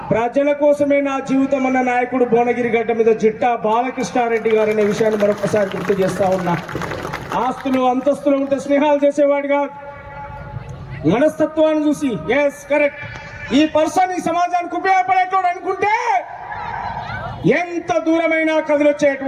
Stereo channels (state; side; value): identical; both; correlation 1.00